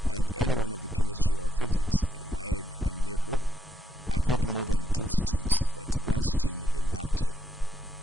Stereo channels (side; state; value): both; normal; correlation 0.77